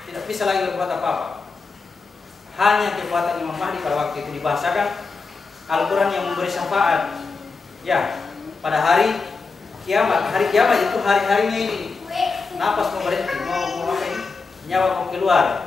Tidak bisa lagi berbuat apa-apa. Hanya kekuatan Imam Mahdi pada waktu itu dibahasakan Al-Quran yang memberi syafaat. Ya, pada hari kiamat. Hari kiamat itu hari-harinya ini. Napas mau berhenti, mau apa ini? Nyawa mau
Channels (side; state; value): right; quieter; 4.4 dB